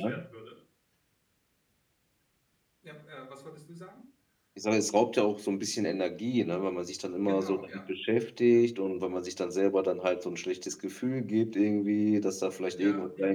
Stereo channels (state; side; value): identical; both; correlation 1.00